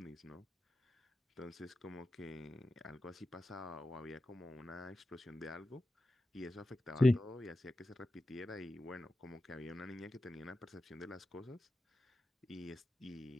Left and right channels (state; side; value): normal; both; correlation 0.92